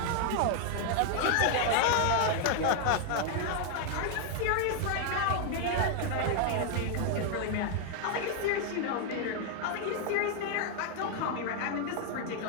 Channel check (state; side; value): different; both; correlation 0.00